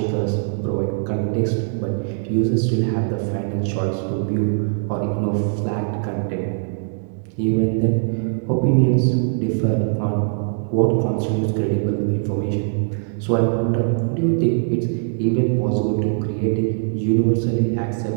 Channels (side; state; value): left; silent; digital silence